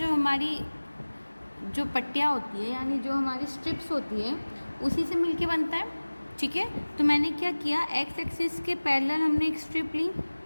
हमारी जो पट्टियाँ होती है, यानी जो हमारी स्ट्रिप्स होती है, उसी से मिलके बनता है, ठीक है। तो मैंने क्या किया, एक्स एक्सिस के पैरेलल हमने एक स्ट्रिप ली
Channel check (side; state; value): both; inverted; correlation -1.00